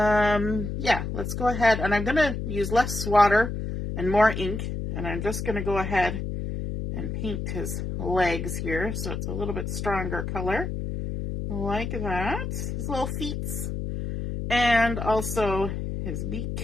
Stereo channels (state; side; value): noise; left; hum, 4 dB below the sound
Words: yeah, let's go ahead, and I'm going to use less water and more ink, and I'm just going to go ahead and paint his legs here, so it's a little bit stronger color, like that, his little feet, and also his